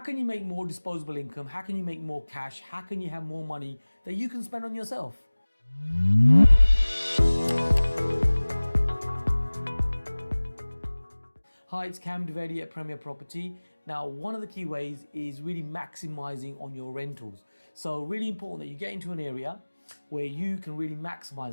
can you make more disposable income? How can you make more cash? How can you have more money that you can spend on yourself? Hi, it's Dovedi at Premier Property. Now, one of the key ways is really maximizing on your rentals. So really important that you get into an area where you can really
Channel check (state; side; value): inverted; both; correlation -1.00